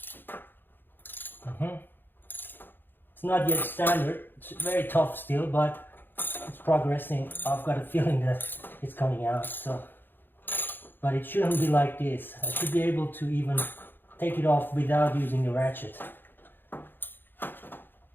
It's not yet standard, it's very tough still, but it's progressing. I've got a feeling that it's coming out, so. But it shouldn't be like this. I should be able to even take it off without using the ratchet.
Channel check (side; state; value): right; late; 0.097 ms